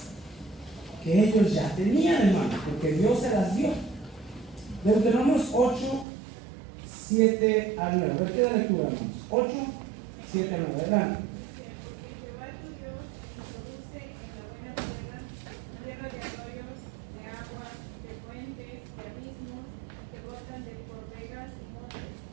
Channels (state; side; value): drops out; left; at 6.1 s